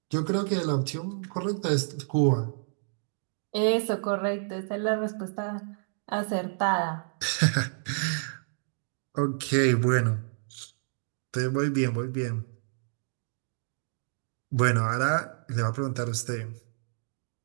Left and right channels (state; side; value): silent; left; digital silence